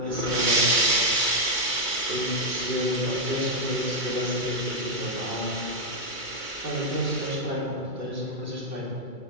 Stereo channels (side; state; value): left; late; 2.3 ms